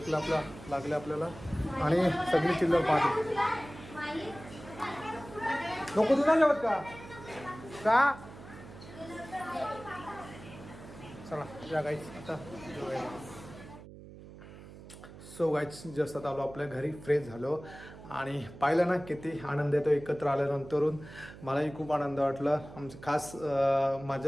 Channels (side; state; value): right; noise; hum, 16 dB below the sound